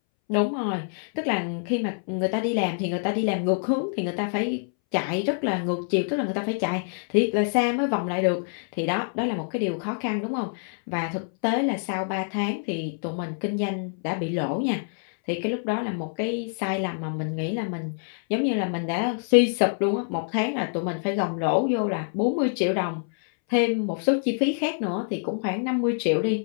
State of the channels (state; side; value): silent; right; 61 dB below the other